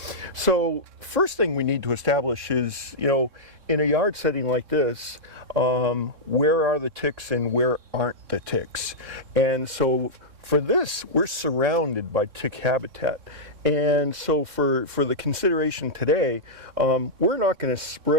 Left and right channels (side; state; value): left; late; 3.6 ms